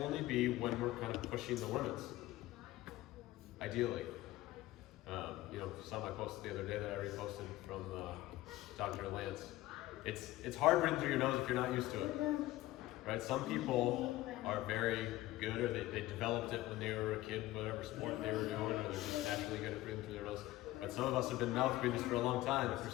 only be when we're kind of pushing the limits, ideally. You know, saw my post the other day that I reposted from Dr. Lance. It's hard breathing through your nose if you're not used to it, right? Some people are very good, or they developed it when they were a kid, whatever sport they were doing, or they're just naturally good at breathing through their nose. But some of us have been mouth breathers for a long time. If you're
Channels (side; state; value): right; quieter; 17.0 dB